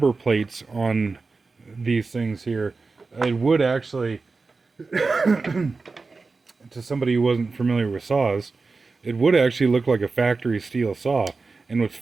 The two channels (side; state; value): left; quieter; 4.1 dB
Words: plates on these things here, it would actually, to somebody who wasn't familiar with saws, it would actually look like a factory steel saw. And what's